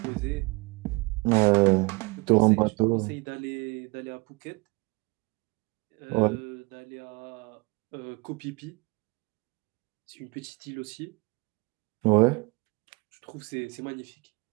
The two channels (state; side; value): quieter; left; 27.5 dB